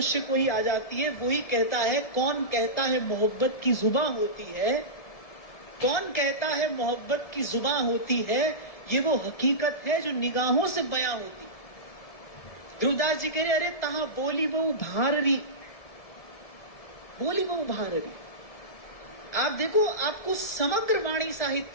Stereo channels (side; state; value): right; late; 1.4 ms